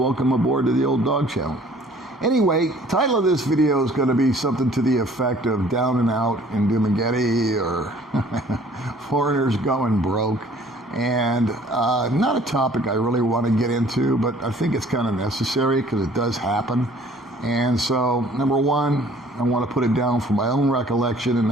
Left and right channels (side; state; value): both; normal; correlation 0.55